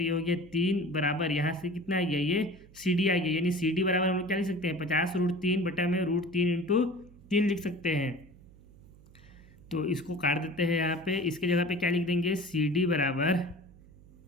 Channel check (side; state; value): right; noise; hum, 23 dB below the sound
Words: ये हो गया 3 बराबर यहाँ से कितना आ गया, ये सी डी आ गया। यानी सी डी बराबर हम लोग क्या लिख सकते हैं, 50√3 बटा में √3 इंटू 3 लिख सकते हैं। तो इसको काट देते हैं यहाँ पे, इसके जगह पे क्या लिख देंगे, सी डी बराबर